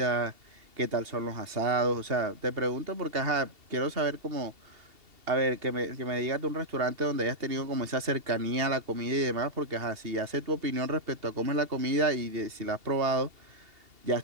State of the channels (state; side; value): late; left; 2.8 ms